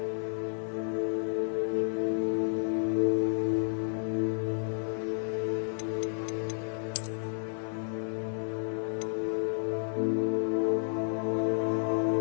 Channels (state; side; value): silent; right; digital silence